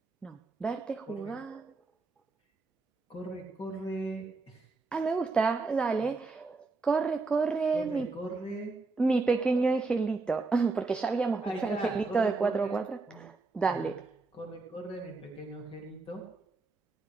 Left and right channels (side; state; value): left; quieter; 3.8 dB